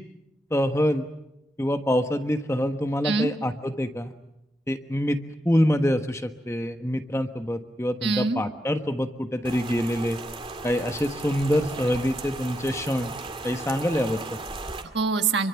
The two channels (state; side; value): normal; both; correlation 0.82